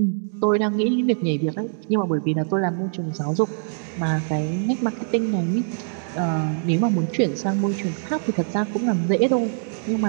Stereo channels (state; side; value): silent; left; digital silence